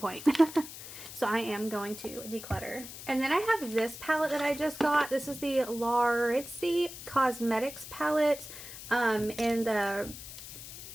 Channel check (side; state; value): left; noise; hiss, 12 dB below the sound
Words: So I am going to declutter. And then I have this palette that I just got. This is the Laritzi Cosmetics palette in the